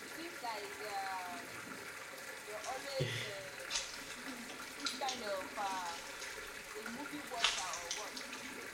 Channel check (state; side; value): identical; both; correlation 1.00